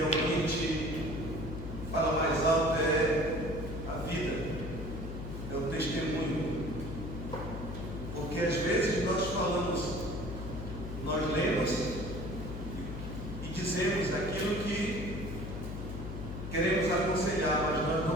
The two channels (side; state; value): left; noise; hum, 7 dB below the sound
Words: fala mais alto é a vida, é o testemunho. Porque às vezes nós lemos e dizemos aquilo que queremos aconselhar, mas nós